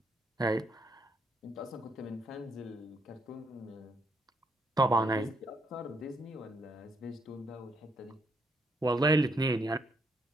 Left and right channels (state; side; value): normal; both; correlation 0.74